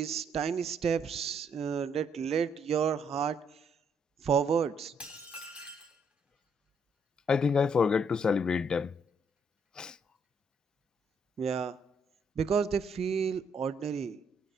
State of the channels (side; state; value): both; normal; correlation 0.71